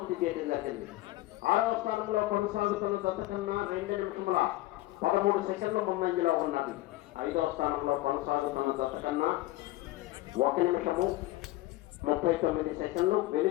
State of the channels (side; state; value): right; quieter; 17.7 dB